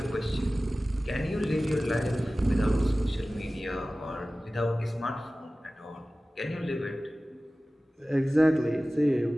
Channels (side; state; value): both; normal; correlation 0.97